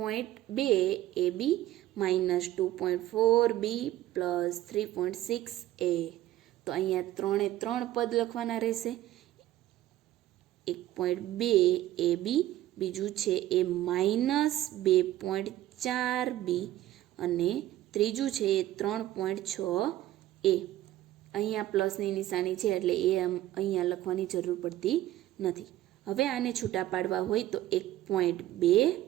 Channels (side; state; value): left; quieter; 14.4 dB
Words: એ બી માઇનસ 2.4 બી પ્લસ 3.6 એ. તો અહીંયા 3 પદ લખવાના રહેશે. 1.2 એ બી, બીજું છે એ માઇનસ 2.4 બી અને ત્રીજું છે એ 3.6 એ. અહીંયા પ્લસની નિશાની છે એટલે એ અહીંયા લખવાની જરૂર પડતી નથી. હવે આને છૂટા પાડવા હોય તો 1.2